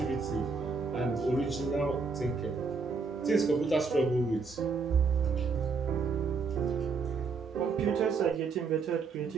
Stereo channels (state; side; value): quieter; left; 4.8 dB